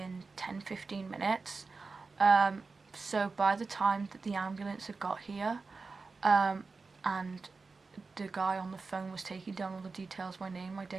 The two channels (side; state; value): left; quieter; 4.2 dB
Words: 10-15 minutes. So by the time that the ambulance had got here, and the guy on the phone was taking down all the details, my name, my